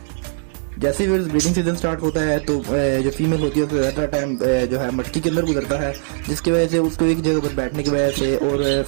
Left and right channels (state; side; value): silent; left; digital silence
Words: जैसे ही ब्रीडिंग सीजन स्टार्ट होता है तो जो फीमेल होती है उसका ज़्यादा टाइम जो है मटकी के अंदर गुजरता है, जिसकी वजह से उसको एक जगह पर बैठने की वजह से और